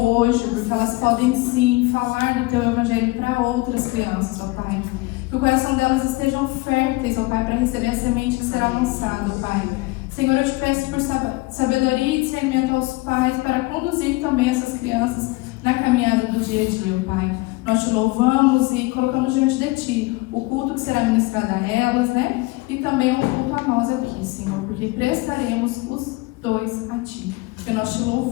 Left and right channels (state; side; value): quieter; right; 22.1 dB